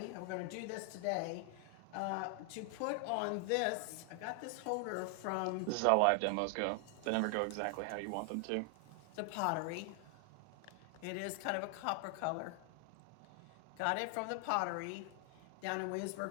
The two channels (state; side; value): different; both; correlation 0.00